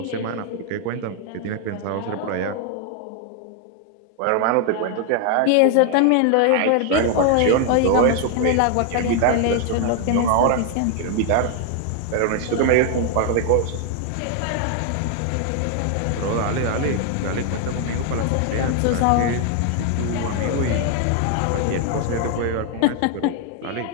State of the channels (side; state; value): both; different; correlation 0.00